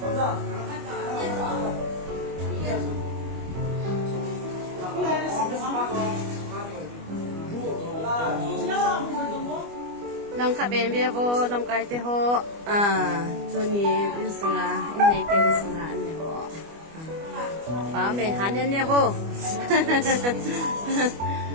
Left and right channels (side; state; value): left; late; 25 ms